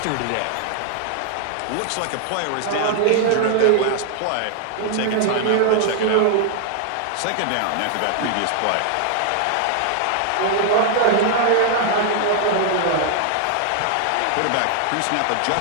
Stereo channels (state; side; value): different; both; correlation 0.00